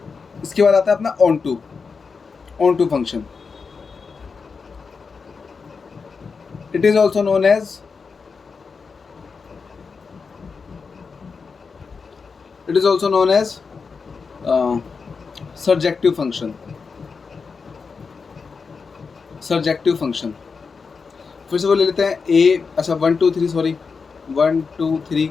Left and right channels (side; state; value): right; quieter; 5.1 dB